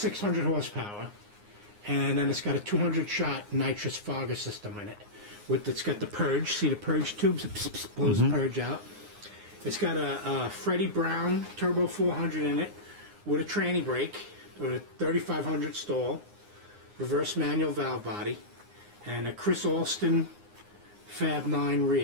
horsepower, and then it's got a 200-shot nitrous fogger system in it. It's got the purge. See the purge tubes? It blows the purge out. It's got a Freddie Brown Turbo 400 in it with a tranny brake, with a 3500 stall, reverse manual valve body, and a Chris Alston Fab 9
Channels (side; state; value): left; late; 9.7 ms